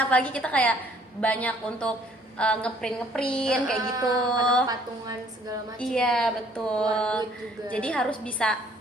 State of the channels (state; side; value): normal; both; correlation 0.60